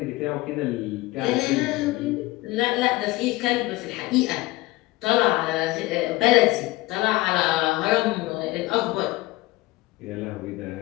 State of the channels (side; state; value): right; quieter; 19.6 dB